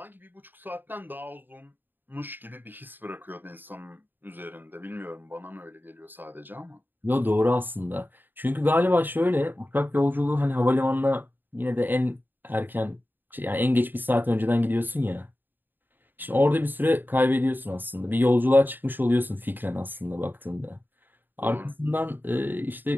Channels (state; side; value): late; left; 0.093 ms